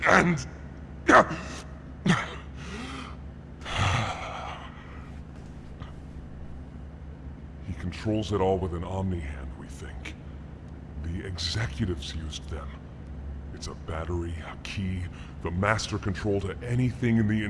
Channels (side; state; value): both; identical; correlation 1.00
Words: and... He controls it all with an omni-hand, we think. The executives used them. It's a battery, a key, the master control to anything in the